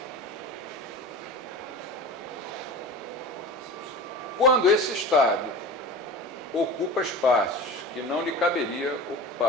Quando esse Estado ocupa espaços que não lhe caberia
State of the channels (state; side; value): normal; both; correlation 0.34